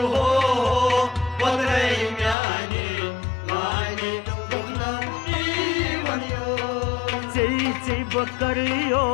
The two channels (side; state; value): right; drops out; at 2.4 s